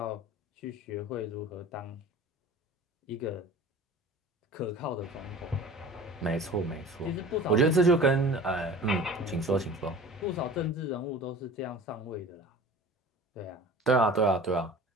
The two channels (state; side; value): normal; both; correlation 0.41